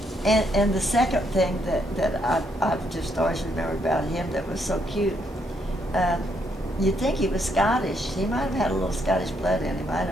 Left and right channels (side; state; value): both; normal; correlation 0.74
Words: And the second thing that I've just always remembered about him that was so cute, you'd think he was Scottish. He might have had a little Scottish blood in him, I